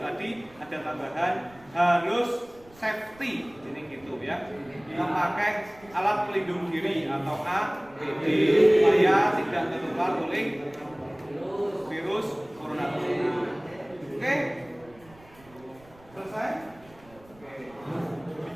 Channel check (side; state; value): right; noise; rumble, 26 dB below the sound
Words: tadi ada tambahan harus safety, ini gitu ya, memakai alat pelindung diri atau APD supaya tidak tertular oleh virus corona tersebut. Oke, selesai.